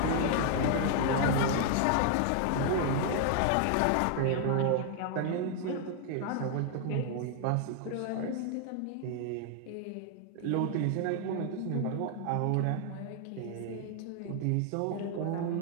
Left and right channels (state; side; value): different; both; correlation 0.00